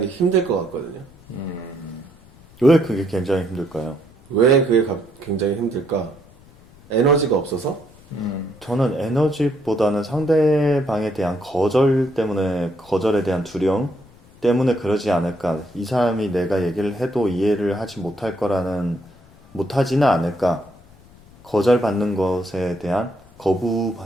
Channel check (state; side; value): noise; left; rumble, 25 dB below the sound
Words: 힘들 것 같거든요. 왜 그게 굉장히 힘들까요? 왜 그게 굉장히 힘들까? 에너지가 없어서? 저는 에너지보다는 상대방에 대한 거절에 대한 두려움 때문에 그러지 않을까. 이 사람이 내가 얘기를 해도 이해를 하지 못하지는 않을까. 거절받는 것에 대한,